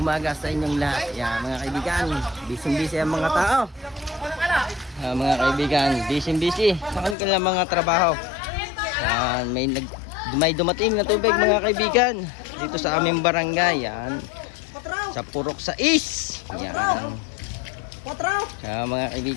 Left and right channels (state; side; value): drops out; right; at 7.2 s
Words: sa inyong lahat. Yan mga kaibigan, busy-busy ang mga tao. Mga kaibigan, busy-busy sa kanilang mga trabaho. Yan, may dumating na tubig mga kaibigan dito sa aming barangay. Yan, sa Purok 6. Yan. Mga